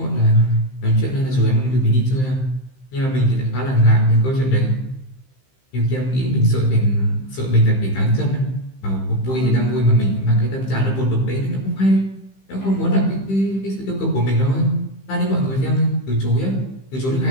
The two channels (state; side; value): late; right; 15 ms